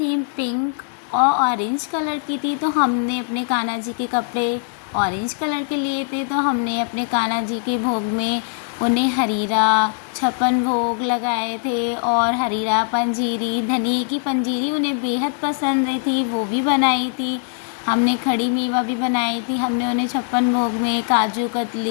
पिंक और ऑरेंज कलर की थी, तो हमने अपने कान्हा जी के कपड़े ऑरेंज कलर के लिए थे। तो हमने अपने कान्हा जी के भोग में उन्हें हरीरा, छप्पन भोग लगाए थे और हरीरा पंजीरी, धनिए की पंजीरी उन्हें बेहद पसंद आई थी, वो भी बनाई थी। हमने खड़ी मेवा भी बनाई थी। हमने उन्हें छप्पन भोग में काजू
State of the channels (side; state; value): right; silent; digital silence